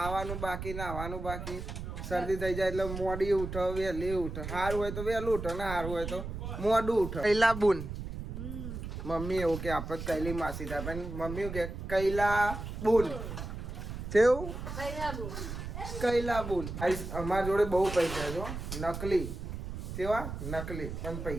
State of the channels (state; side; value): noise; right; rumble, 7 dB below the sound